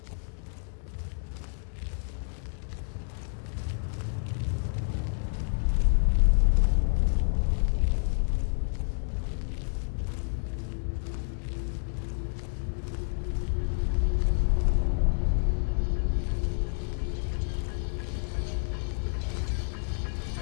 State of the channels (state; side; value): silent; right; digital silence